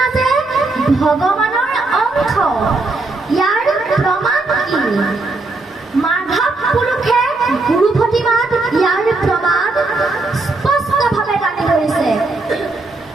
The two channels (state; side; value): quieter; left; 3.3 dB